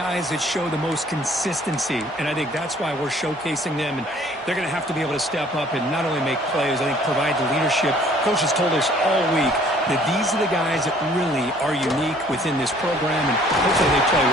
that show the most consistency, and I think that's why we're showcasing them. And they're going to have to be able to step up and not only make plays, I think provide the leadership. Coaches told us all week that these are the guys that really are unique within this program, and hopefully they play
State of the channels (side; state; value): both; normal; correlation 0.57